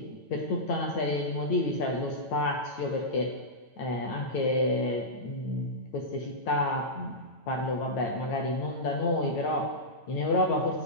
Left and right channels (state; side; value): late; right; 8.9 ms